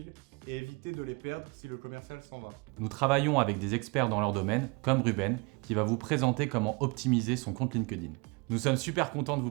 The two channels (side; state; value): left; quieter; 29.6 dB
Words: et éviter de les perdre si le commercial s'en va. Nous travaillons avec des experts dans leur domaine, comme Ruben, qui va vous présenter comment optimiser son compte LinkedIn. Nous sommes super contents de vous